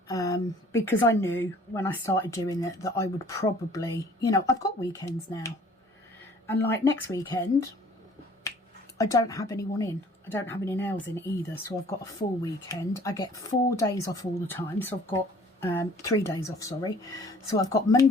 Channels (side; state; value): both; normal; correlation 0.53